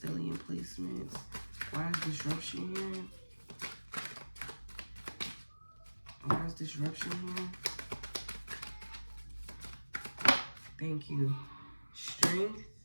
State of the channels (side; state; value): both; inverted; correlation -1.00